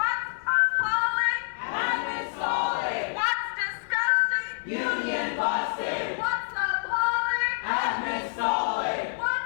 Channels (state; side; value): silent; right; digital silence